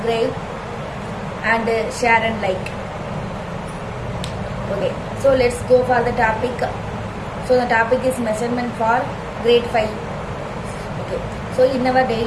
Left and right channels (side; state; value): both; identical; correlation 1.00